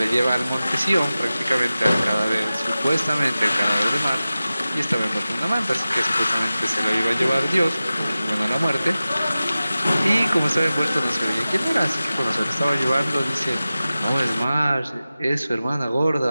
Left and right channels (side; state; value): both; inverted; correlation -0.95